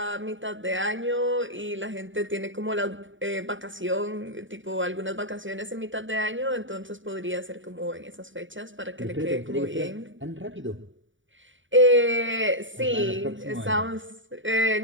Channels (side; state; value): left; late; 0.56 ms